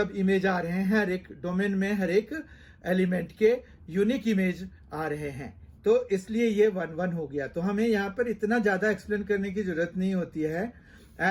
इमेज आ रहे हैं, हर एक डोमेन में हर एक एलिमेंट के यूनिक इमेज आ रहे हैं, तो इसलिए ये 1 1 हो गया। तो हमें यहाँ पर इतना ज्यादा एक्सप्लेन करने की जरूरत नहीं होती है।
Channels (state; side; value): identical; both; correlation 1.00